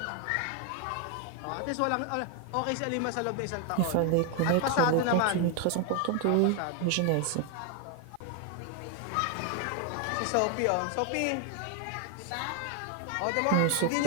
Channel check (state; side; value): different; both; correlation 0.01